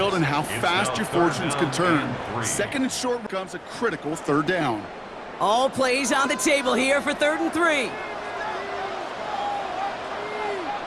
and how fast your fortunes can turn. Second and short becomes a critical third down. All plays on the table here for 3rd and 3.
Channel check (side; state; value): both; identical; correlation 1.00